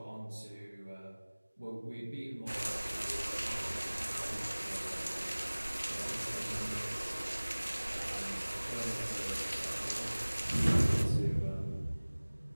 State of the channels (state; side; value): inverted; both; correlation -1.00